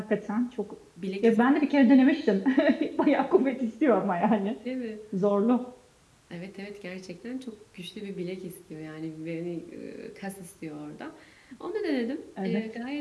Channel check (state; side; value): identical; both; correlation 1.00